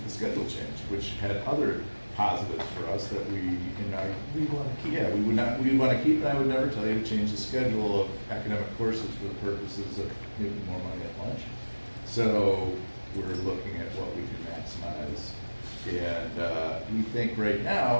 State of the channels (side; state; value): both; inverted; correlation -1.00